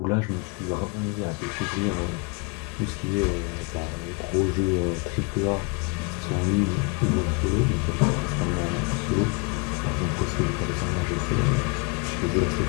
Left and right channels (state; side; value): quieter; right; 32.1 dB